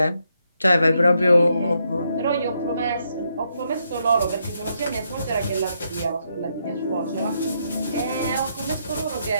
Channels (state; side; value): inverted; both; correlation -0.78